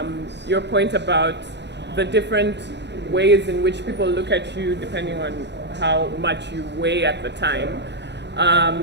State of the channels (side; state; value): left; late; 0.50 ms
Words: your point about the different ways in which people look at you depending on how much you weigh at the time.